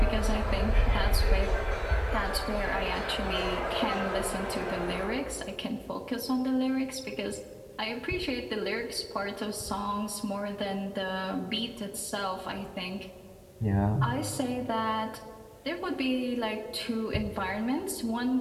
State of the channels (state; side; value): identical; both; correlation 1.00